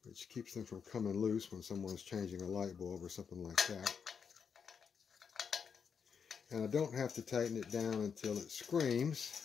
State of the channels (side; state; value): right; quieter; 6.6 dB